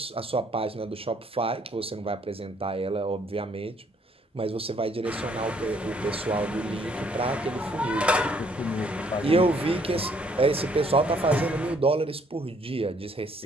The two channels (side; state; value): both; normal; correlation 0.65